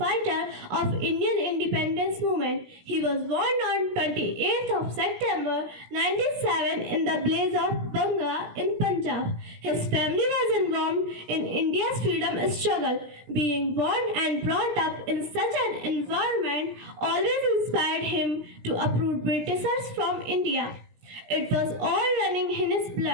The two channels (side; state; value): left; late; 17 ms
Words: of Indian independence movement. He was born on 28th of September 1907 in the blaze of Banga in Punjab. His family was involved in India's freedom struggle. Being born and brought up in such an environment always inspired him to uproot Britishers from India. It was all running in his